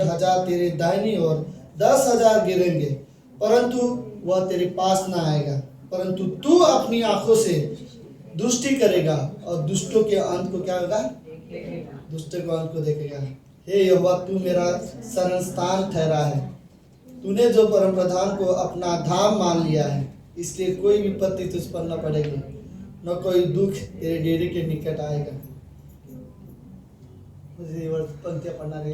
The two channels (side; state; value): both; identical; correlation 1.00